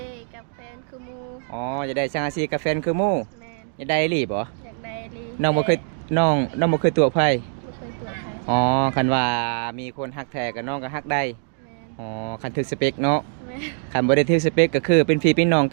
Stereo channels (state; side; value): silent; left; digital silence